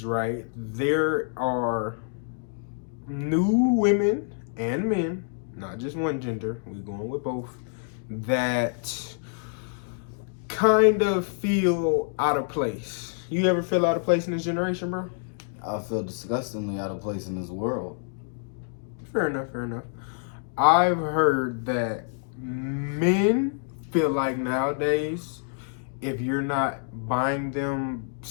right, there are new women and men, not just one gender, we're going with both, that kind of feel out of place. You ever feel out of place in this generation, bro? I feel disgustingly out of place in this world. Fair enough. I've heard that men feel like nowadays, if you're not buying them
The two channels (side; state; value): right; silent; 60 dB below the other